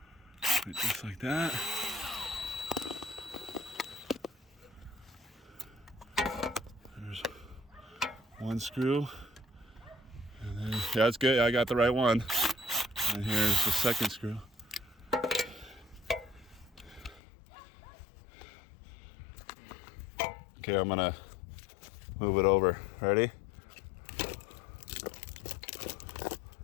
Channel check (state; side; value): drops out; right; at 17.2 s